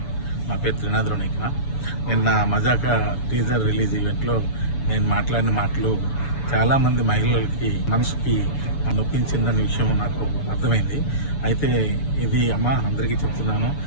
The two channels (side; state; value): right; late; 7.0 ms